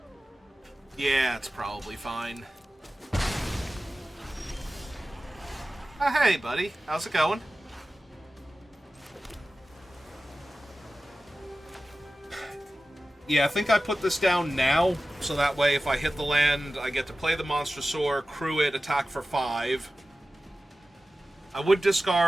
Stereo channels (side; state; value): both; normal; correlation 0.95